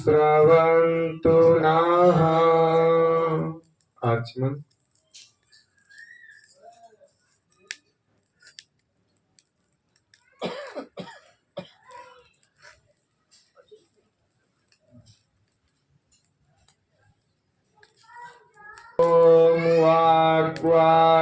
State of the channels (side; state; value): both; identical; correlation 1.00